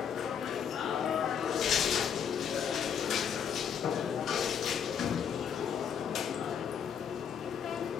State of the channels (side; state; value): right; quieter; 7.8 dB